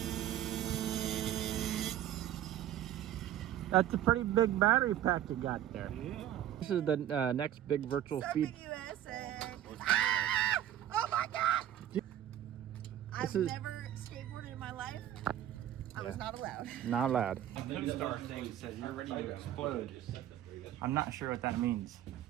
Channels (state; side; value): quieter; left; 11.8 dB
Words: That's a pretty big battery pack you got there. Yeah. This is the next big virtual speed. USA. Ah! Oh my God! I've never skateboarded in my life. I was not allowed. Not allowed. The co-star thing says you're ready to explode. I'm not sure what that means.